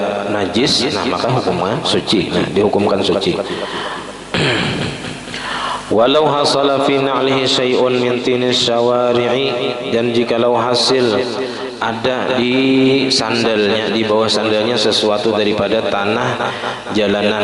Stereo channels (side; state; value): both; identical; correlation 1.00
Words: najis, nah maka hukumnya suci. Nah, dihukumkan suci. Walau hasala fi na'lihi syai'un min tinis syawari'i, dan jikalau hasil ada di sandalnya, di bawah sandalnya sesuatu daripada tanah